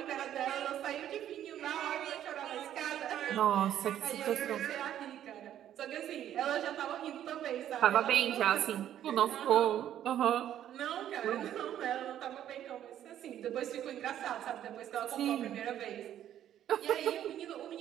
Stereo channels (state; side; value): quieter; left; 11.1 dB